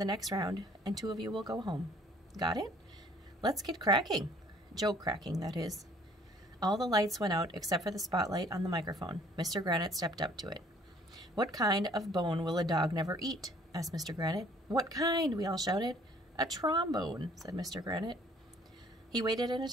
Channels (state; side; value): normal; both; correlation 0.57